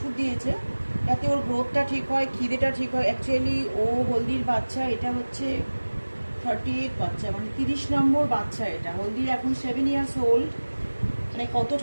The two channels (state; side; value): inverted; both; correlation -1.00